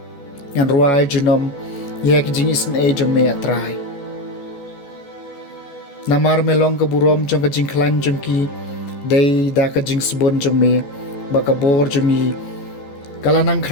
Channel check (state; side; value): late; right; 14 ms